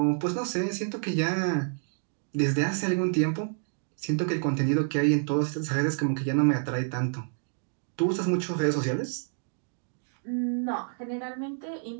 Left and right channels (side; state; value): left; silent; digital silence